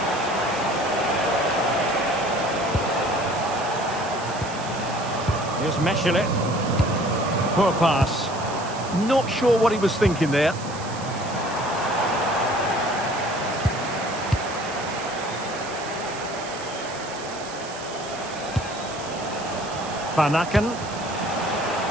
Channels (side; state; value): right; noise; hiss, 14 dB below the sound